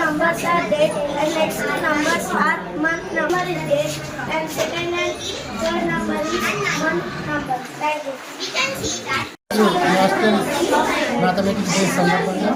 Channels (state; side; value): identical; both; correlation 1.00